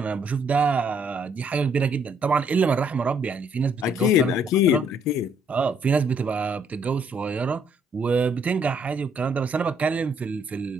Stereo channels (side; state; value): both; normal; correlation 0.67